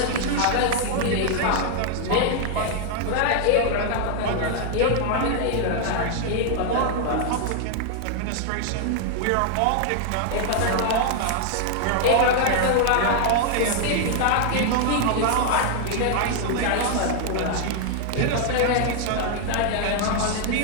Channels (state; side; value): different; both; correlation 0.00